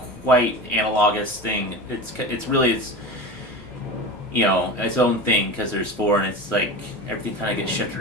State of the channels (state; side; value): normal; both; correlation 0.29